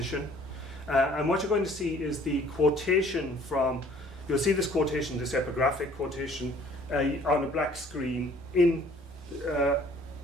And what you're going to see is the quotation from, you'll see this quotation, this epigraphic quotation, on a black screen,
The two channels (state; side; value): normal; both; correlation 0.56